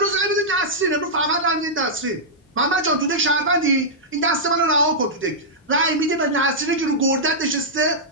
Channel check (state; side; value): normal; both; correlation -0.10